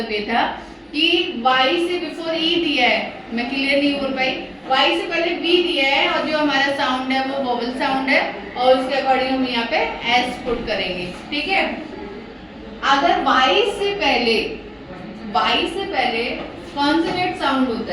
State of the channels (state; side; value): identical; both; correlation 1.00